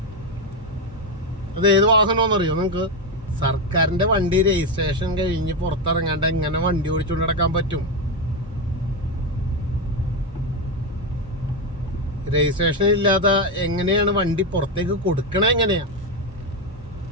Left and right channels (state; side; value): normal; both; correlation 0.09